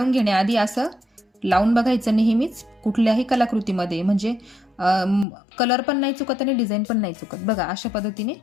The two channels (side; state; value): right; drops out; at 5.2 s